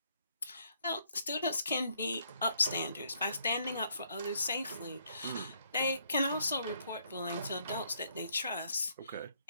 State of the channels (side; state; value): both; inverted; correlation -0.69